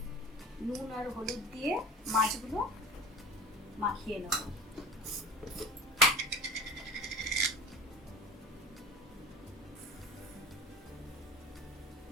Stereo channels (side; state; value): both; normal; correlation 0.37